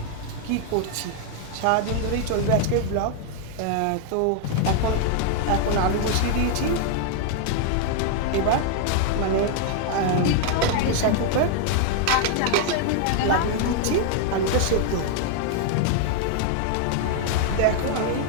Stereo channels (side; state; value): both; different; correlation 0.00